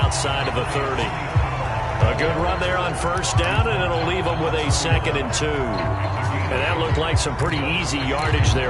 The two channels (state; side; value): identical; both; correlation 1.00